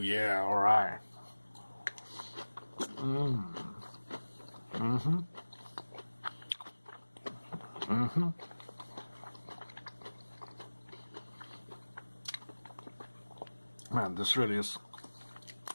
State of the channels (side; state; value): both; inverted; correlation -1.00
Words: alright. Man, this really is